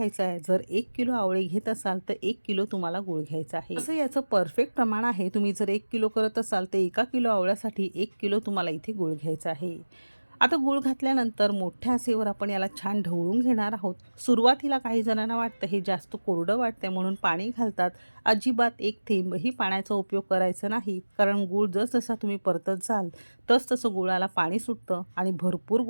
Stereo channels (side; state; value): both; inverted; correlation -1.00